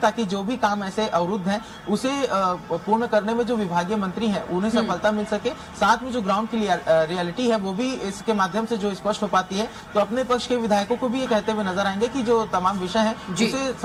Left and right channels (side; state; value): both; identical; correlation 1.00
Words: जो भी काम ऐसे अवरुद्ध हैं उसे पूर्ण करने में जो विभागीय मंत्री हैं उन्हें सफलता मिल सके। साथ में जो ग्राउंड की रियलिटी है वो भी इसके माध्यम से जो स्पष्ट हो पाती है। तो अपने पक्ष के विधायकों को भी ये कहते हुए नजर आएंगे कि जो तमाम विषय है उसे